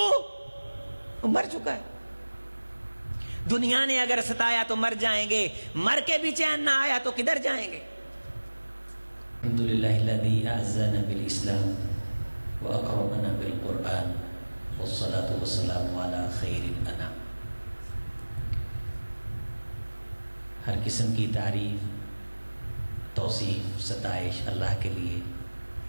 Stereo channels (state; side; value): inverted; both; correlation -1.00